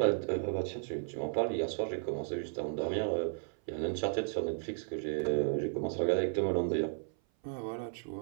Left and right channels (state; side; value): silent; left; 55 dB below the other